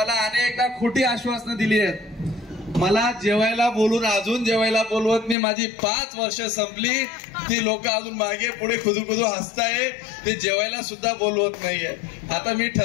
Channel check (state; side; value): drops out; right; at 5.4 s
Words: अनेकदा खोटी आश्वासनं दिली आहेत. मला जेवायला बोलून अजून जेवायला बोलवत नाही. माझी 5 वर्ष संपली, ती लोक अजून मागे पुढे खुदू हसताय. ते जेवायला सुद्धा बोलवत नाहीये. आता मी